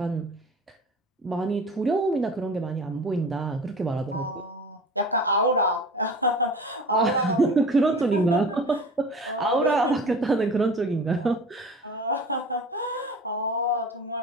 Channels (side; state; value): both; normal; correlation 0.39